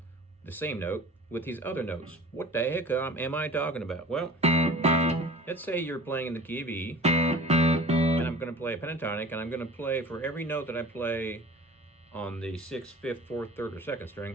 the same note with these other notes. What the heck am I talking about? Well, let's say you're playing in the key of E, and I'm going to play a pentatonic, and I'm going to play for every note that I play on the 6th, 5th, 4th, 3rd, or 2nd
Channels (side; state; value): both; normal; correlation 0.41